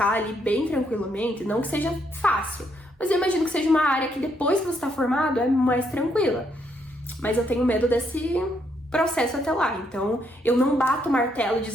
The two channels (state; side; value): normal; both; correlation 0.74